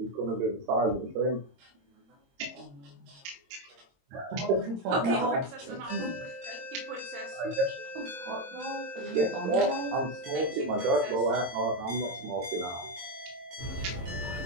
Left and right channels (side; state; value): left; late; 22 ms